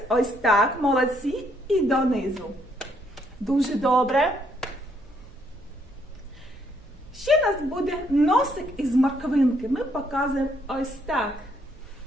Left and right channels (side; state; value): right; noise; hum, 29 dB below the sound